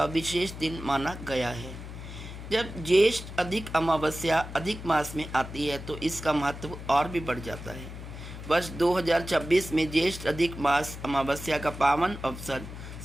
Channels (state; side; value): noise; left; hum, 11 dB below the sound